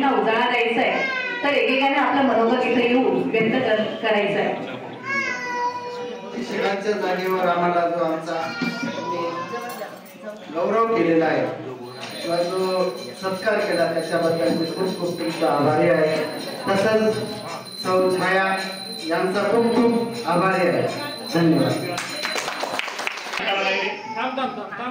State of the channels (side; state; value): both; identical; correlation 1.00